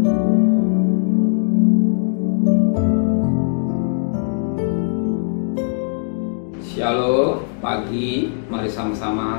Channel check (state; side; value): silent; right; digital silence